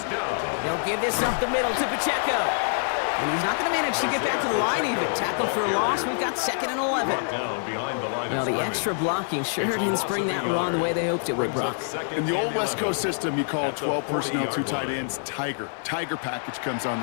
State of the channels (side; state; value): right; silent; 61 dB below the other